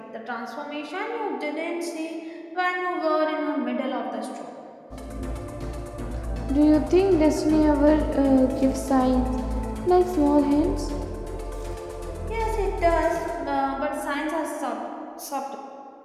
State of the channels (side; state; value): both; identical; correlation 1.00